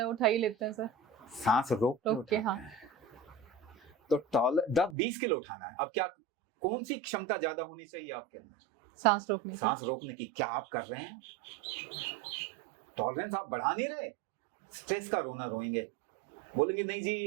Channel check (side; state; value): left; drops out; at 5.0 s